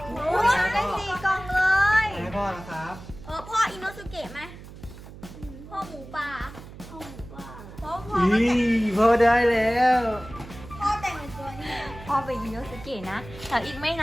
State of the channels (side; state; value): right; noise; hum, 16 dB below the sound